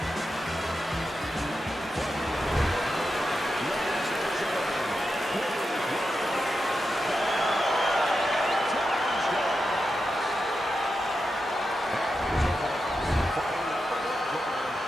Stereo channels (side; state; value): both; normal; correlation 0.88